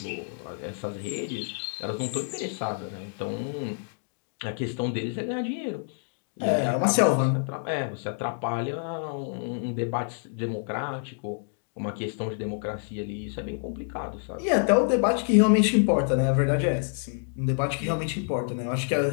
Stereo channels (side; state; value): right; silent; digital silence